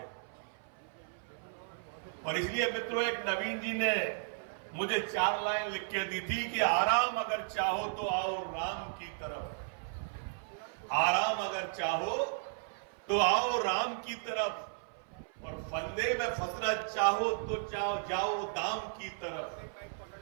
और इसलिए मित्रों, एक नवीन जी ने मुझे 4 लाइन लिख के दी थी कि आराम अगर चाहो तो आओ राम की तरफ, आराम अगर चाहो तो आओ राम की तरफ, और फंदे में फंसना चाहो तो जाओ दाम की तरफ,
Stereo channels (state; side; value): silent; left; 55 dB below the other